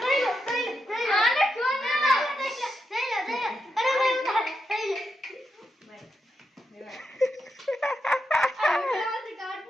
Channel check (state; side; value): normal; both; correlation 0.85